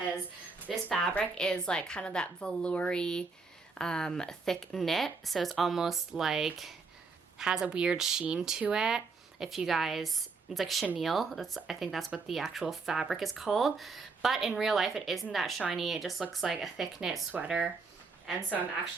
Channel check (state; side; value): quieter; left; 4.5 dB